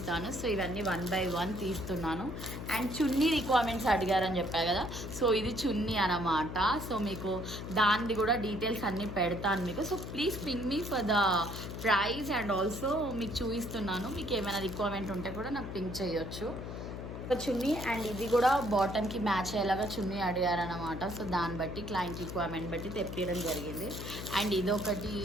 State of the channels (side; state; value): left; noise; hum, 8 dB below the sound